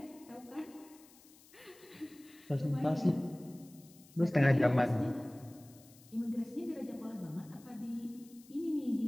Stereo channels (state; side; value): noise; left; hiss, 24 dB below the sound